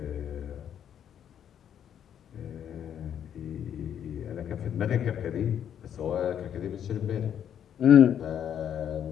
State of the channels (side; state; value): right; quieter; 9.3 dB